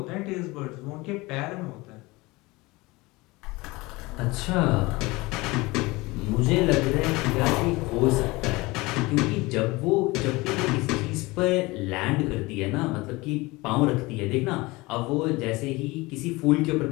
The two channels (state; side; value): quieter; right; 22.5 dB